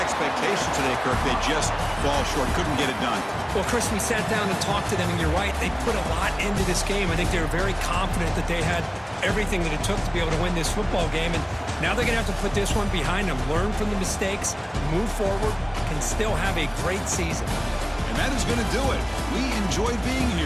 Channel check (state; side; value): identical; both; correlation 1.00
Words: today, Kirk. They just fall short. Couldn't get it done. Well, Chris, we sat down and talked to them, and you're right. They put a lot into this game. I think they were very confident that they had everything that it took to be able to win this football game. And now they're going to have to put this one behind them, learn from the mistakes, move forward, and still have a great season. And that is going to do it. We enjoyed being